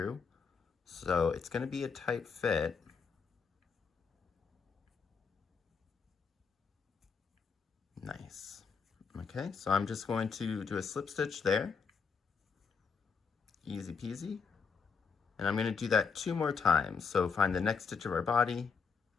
So it's going to be a tight fit. Nice. Okay, so I'm just going to do a slip stitch there. Easy peasy. And I'm going to do that 2 more times. So find the next stitch of our body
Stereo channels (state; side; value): quieter; right; 5.6 dB